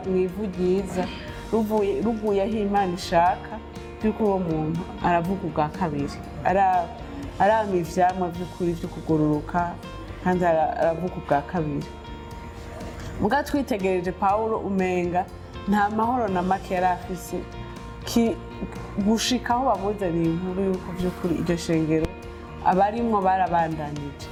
mu ivu ryiza ruguye aho Imana ishaka by'ukuri uwo muntu aravuga ubwa kabiri arama ivyamwa by'ukuri byo kugororoka kandi aravuga ubwa kabiri muga twitegereje Pawulo umenga nta mahoro na make yari afise gushika aho bamuzaniye inkuru y'uko by'ukuri iryo shengero abarimwo barabandanije.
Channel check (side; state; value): both; identical; correlation 1.00